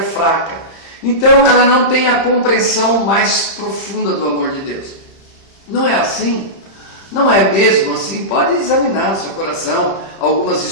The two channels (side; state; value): right; late; 30 ms